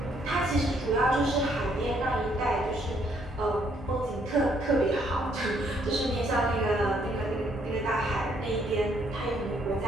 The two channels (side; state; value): both; normal; correlation 0.69